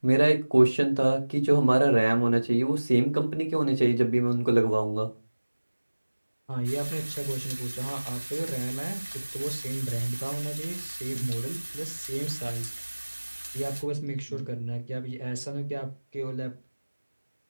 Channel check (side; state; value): both; inverted; correlation -1.00